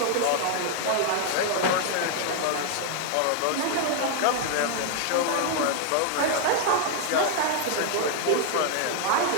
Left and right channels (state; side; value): different; both; correlation 0.00